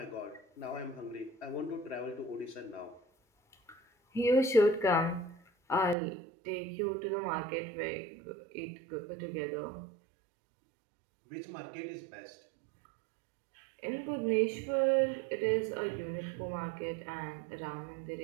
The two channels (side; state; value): left; drops out; at 6.0 s